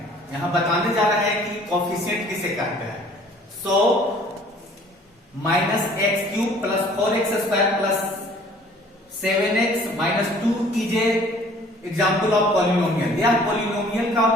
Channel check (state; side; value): normal; both; correlation 0.54